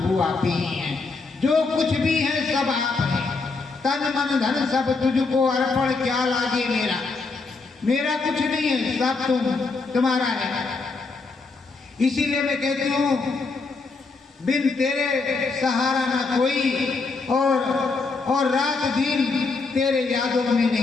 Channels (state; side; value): quieter; right; 4.0 dB